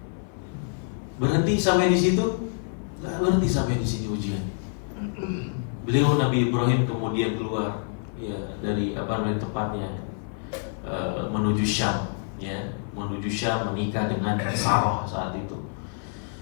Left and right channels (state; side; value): silent; right; 55 dB below the other